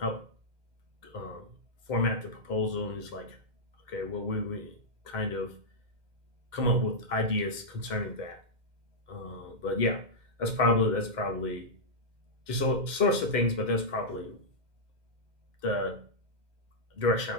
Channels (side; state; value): left; late; 2.1 ms